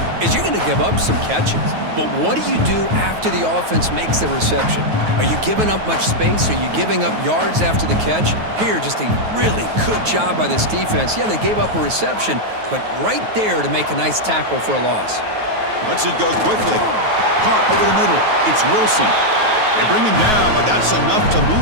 is you're going to give up some catches. But what do you do after the offense makes the reception? Are you giving up much space? Are you giving up yards after the catch? Here, just a really good job by this defense. Yeah, they gave up a reception, but right there to make a nice tackle for a loss. Lets it go quickly. Caught over the middle. It's Wilson. They bring him down, but that's enough to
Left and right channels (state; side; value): late; left; 9.3 ms